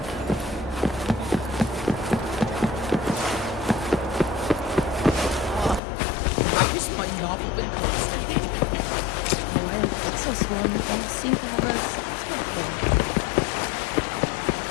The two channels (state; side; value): drops out; right; at 5.8 s